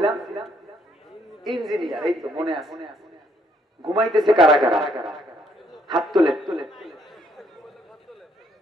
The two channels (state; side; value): normal; both; correlation 0.69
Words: ইঞ্জিনিয়ার। এই তো মনে আছে। ঘুমাইতেছে কারা কারা? হাত তোলে।